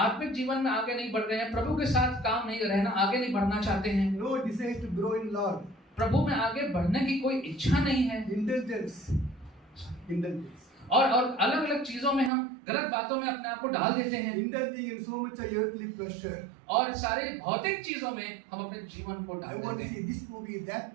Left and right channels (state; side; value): drops out; left; at 12.3 s